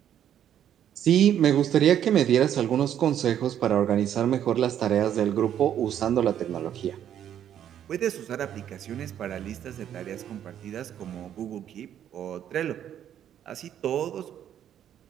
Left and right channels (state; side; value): quieter; left; 10.1 dB